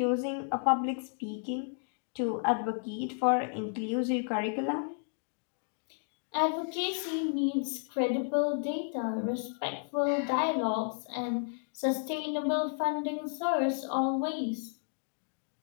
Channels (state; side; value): silent; right; 56 dB below the other